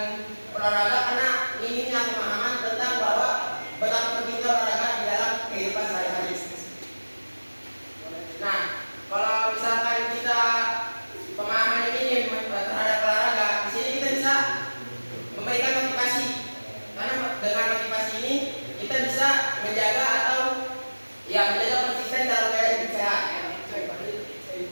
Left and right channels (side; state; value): both; inverted; correlation -1.00